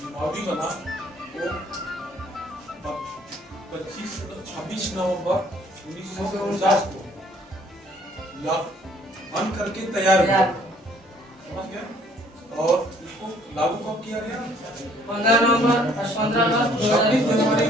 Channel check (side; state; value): both; normal; correlation 0.61